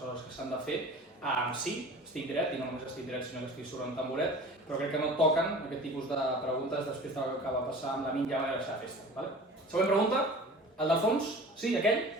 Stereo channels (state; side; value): normal; both; correlation 0.41